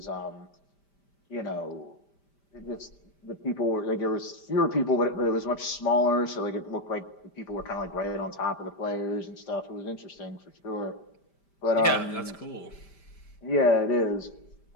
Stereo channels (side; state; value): right; late; 5.1 ms